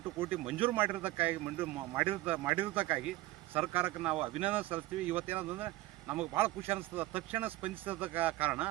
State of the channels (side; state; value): left; quieter; 17.7 dB